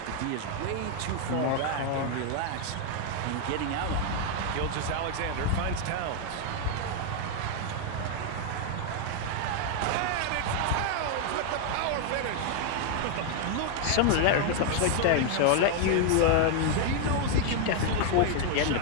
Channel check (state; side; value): different; both; correlation 0.00